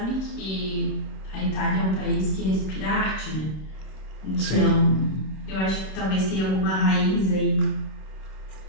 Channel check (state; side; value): late; right; 26 ms